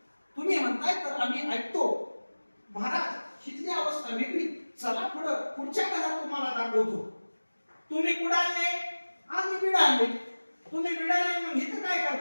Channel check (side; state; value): both; inverted; correlation -1.00